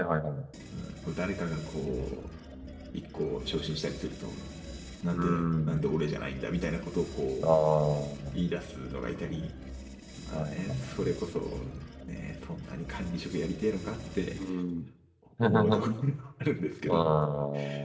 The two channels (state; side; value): identical; both; correlation 1.00